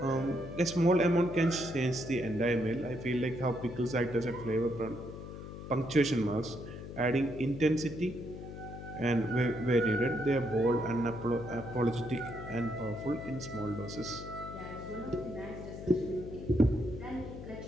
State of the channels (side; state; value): left; noise; hum, 11 dB below the sound